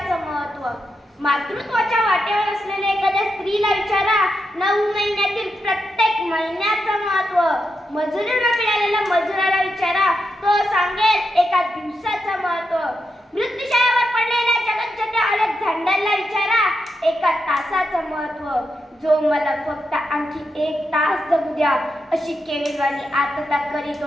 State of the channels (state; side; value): normal; both; correlation 0.86